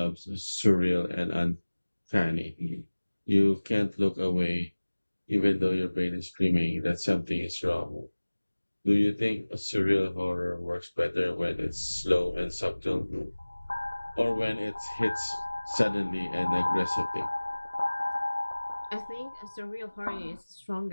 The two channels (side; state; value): both; inverted; correlation -1.00